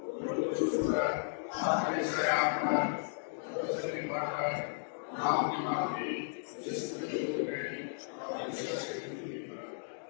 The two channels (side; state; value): right; silent; digital silence